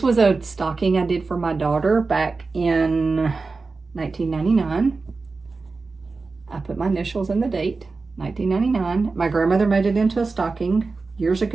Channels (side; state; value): left; quieter; 4.0 dB